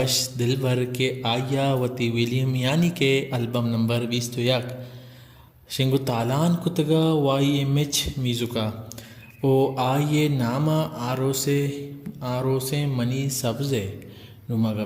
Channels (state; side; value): identical; both; correlation 1.00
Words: دلبر کے آیا وتی ویلیم یعنی کہ البم نمبر 21 شنگو تالان کتگا وائی ایم ایچ میزوکا او آئیے نامہ آروسے منی سبزے نما